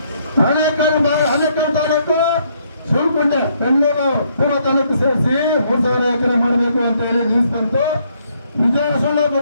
ಹಣೆಕಾಳು ತಾಲೂಕು, ಸುಳ್ಕೊಂಡೆ, ಬೆಂಗಳೂರು ಪೂರ್ವ ತಾಲೂಕು ಸೇರಿಸಿ 3,000 ಎಕರೆ ಮಾಡಬೇಕು ಅಂತ ಹೇಳಿ ನ್ಯೂಸ್ ಬಂತು. ವಿಜಯ ಸುಳ್ಳು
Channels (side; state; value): both; inverted; correlation -0.70